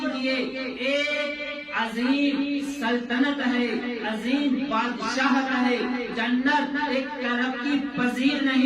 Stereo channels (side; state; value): both; identical; correlation 1.00